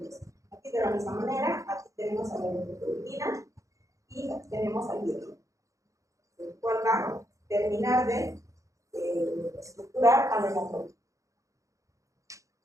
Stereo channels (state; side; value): late; left; 0.15 ms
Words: Aquí de la misma manera, aquí tenemos a la eritropoietina y aquí tenemos al hierro, el cual va a terminar de estructurar a la hemoglobina.